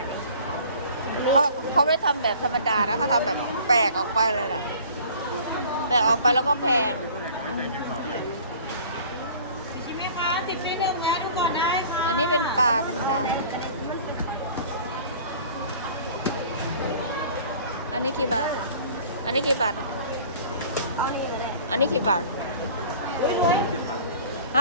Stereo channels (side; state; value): both; inverted; correlation -0.47